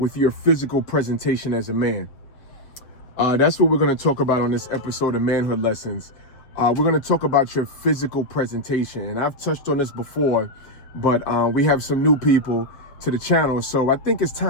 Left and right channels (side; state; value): right; late; 7.3 ms